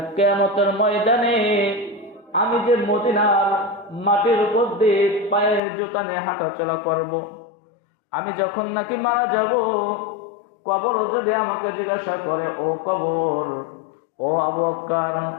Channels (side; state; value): right; drops out; at 5.6 s